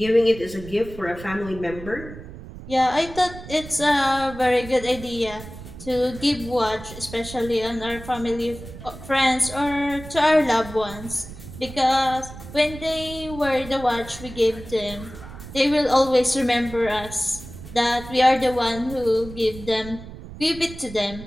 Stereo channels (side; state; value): right; noise; rumble, 14 dB below the sound